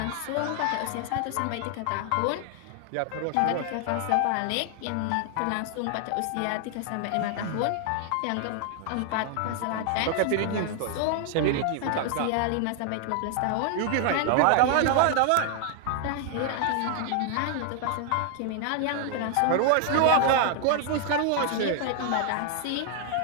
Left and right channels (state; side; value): different; both; correlation 0.00